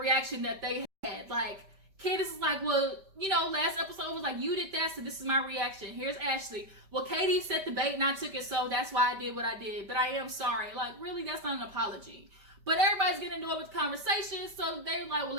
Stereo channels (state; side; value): late; left; 5.1 ms